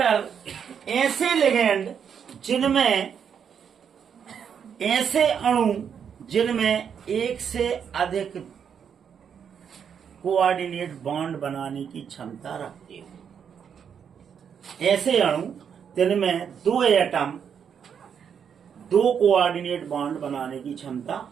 ऐसे लिगेंड जिनमें, ऐसे अणु जिनमें एक से अधिक कोऑर्डिनेट बॉन्ड बनाने की क्षमता रखते हो, ऐसे अणु जिनमें दो एटम दो कोऑर्डिनेट बॉन्ड बनाने की क्षमता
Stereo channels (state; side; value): quieter; left; 7.6 dB